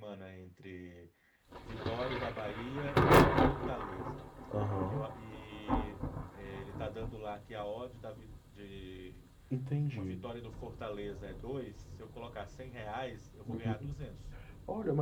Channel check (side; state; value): both; identical; correlation 1.00